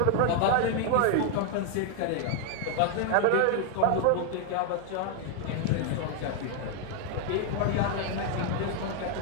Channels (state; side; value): different; both; correlation 0.00